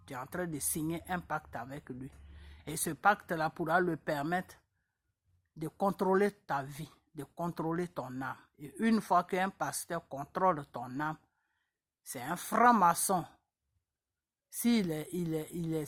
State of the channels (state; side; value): identical; both; correlation 1.00